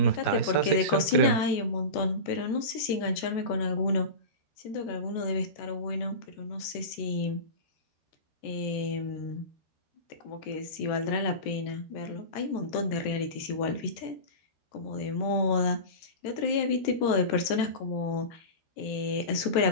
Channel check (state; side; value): late; right; 13 ms